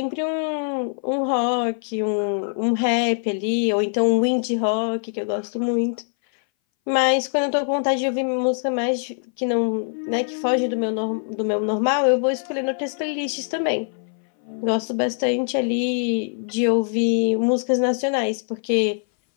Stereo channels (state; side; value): silent; right; 61 dB below the other